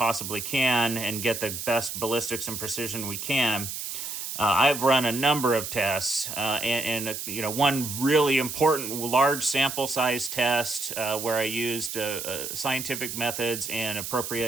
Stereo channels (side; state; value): right; noise; hiss, 6 dB below the sound